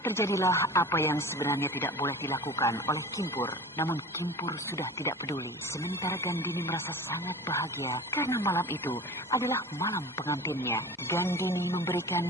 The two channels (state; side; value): normal; both; correlation 0.37